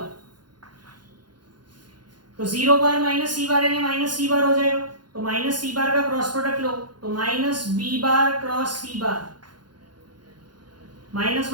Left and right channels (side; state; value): left; late; 0.71 ms